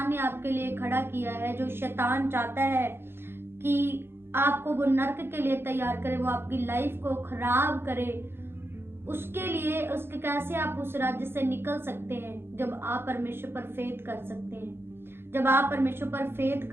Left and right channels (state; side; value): late; left; 0.11 ms